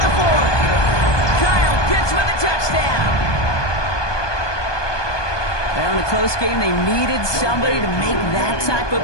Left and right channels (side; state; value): right; late; 1.2 ms